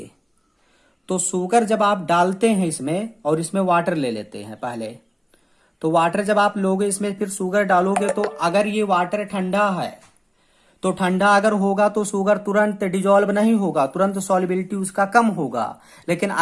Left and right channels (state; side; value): identical; both; correlation 1.00